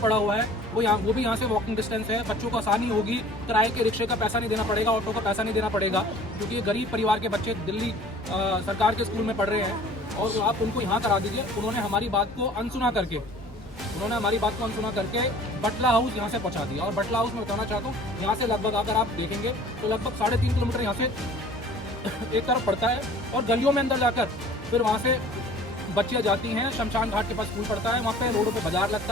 हुआ है, वो भी यहाँ से वॉकिंग डिस्टेंस है, बच्चों को आसानी होगी, किराए के रिक्शे का पैसा नहीं देना पड़ेगा, ऑटो का पैसा नहीं देना पड़ेगा, क्योंकि ये गरीब परिवार के बच्चे दिल्ली सरकार के स्कूल में पढ़ रहे हैं, और आप उनको यहाँ करा दीजिए। उन्होंने हमारी बात को अनसुना करके बटला हाउस यहाँ से पहुँचा दिया। और बटला हाउस में बताना चाहता हूँ, यहाँ से लगभग अगर आप देखेंगे तो लगभग 3.5 किलोमीटर यहाँ से एक तरफ पड़ता है, और गलियों में अंदर जाकर फिर वहाँ से बच्चियाँ जाती हैं, शमशान घाट के पास स्कूल पड़ता है, वहाँ पे रोडों पे बाजार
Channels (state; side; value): normal; both; correlation 0.48